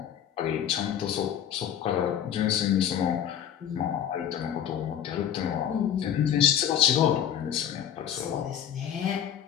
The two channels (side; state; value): right; quieter; 9.6 dB